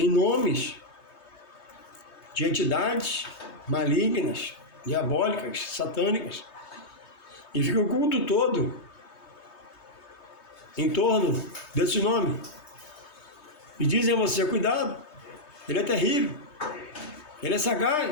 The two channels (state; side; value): late; right; 3.2 ms